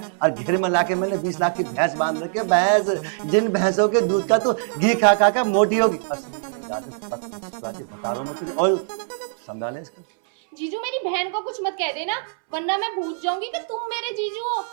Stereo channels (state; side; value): silent; left; 64 dB below the other